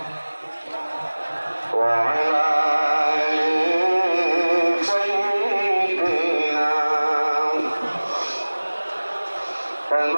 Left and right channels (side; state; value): both; inverted; correlation -1.00